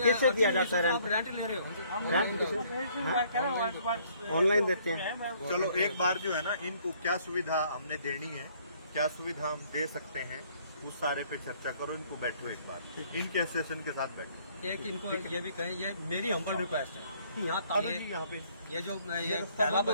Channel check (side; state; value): both; inverted; correlation -0.62